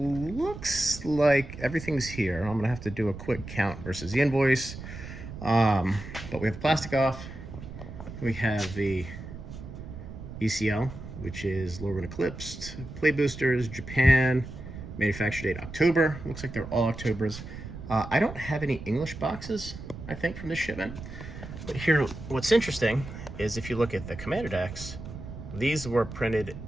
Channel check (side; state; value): right; noise; rumble, 11 dB below the sound